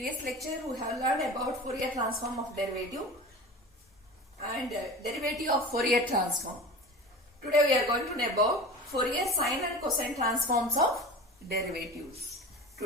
lecture we have learned about Fourier transform of derivative and derivative of Fourier transform. Today we are going to know about Fourier sine and cosine transforms of derivatives.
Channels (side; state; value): both; normal; correlation 0.34